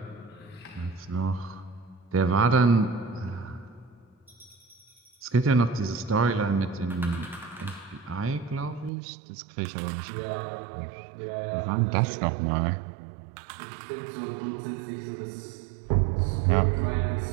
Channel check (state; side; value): drops out; left; at 8.9 s